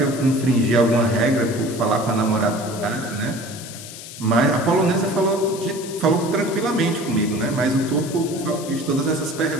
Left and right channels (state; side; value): noise; left; hiss, 13 dB below the sound